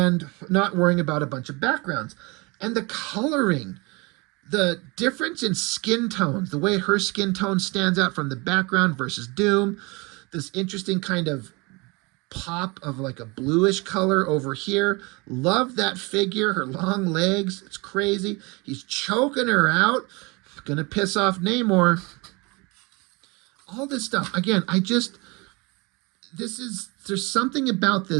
not worrying about a bunch of backgrounds. And the coloring, the difference in skin tones, the way her skin tone stands out from the background versus Doom, this interesting kind of pop of like a bluish color over here. Love that figure, her long legs. It's crazy. He's choking her out. Gonna piss off Namor. All this stuff. Again, there's something about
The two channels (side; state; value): left; quieter; 26.9 dB